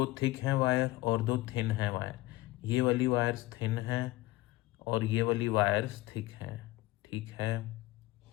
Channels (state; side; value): quieter; right; 19.0 dB